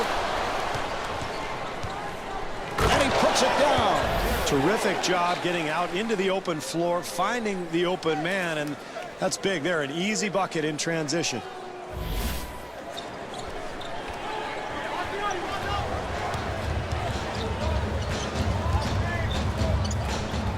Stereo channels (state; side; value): identical; both; correlation 1.00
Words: And he puts it down. Terrific job getting out into the open floor, finding the open man, and that's big there. An easy bucket in transition.